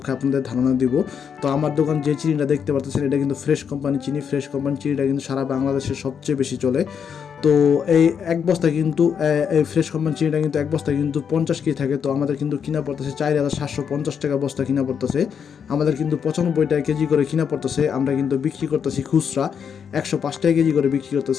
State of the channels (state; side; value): quieter; right; 7.3 dB